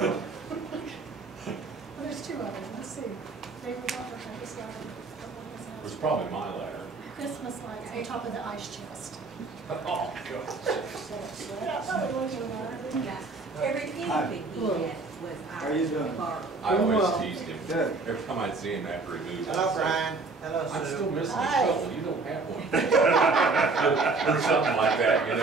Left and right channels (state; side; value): quieter; left; 3.8 dB